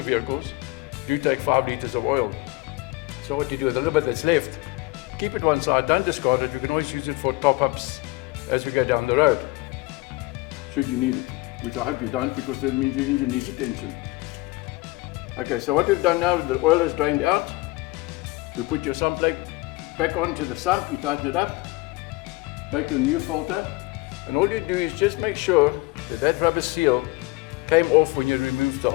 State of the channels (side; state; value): right; quieter; 21.5 dB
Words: do take 5 liters of oil. So what you do with the little bit that's left, keep it one side, don't discard it. You can always use it for top-ups as we go down the road, should you need it, which I hope you don't, because that means your engine needs attention. Okay, so what we've done now, the oil is drained out. We put your sump plug back onto the sump, you tighten it up, take your new filter, and all you do is just make sure that that rubber seal came off when you removed the